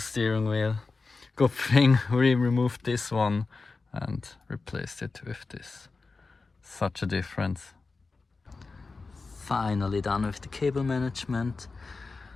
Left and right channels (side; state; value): right; quieter; 4.0 dB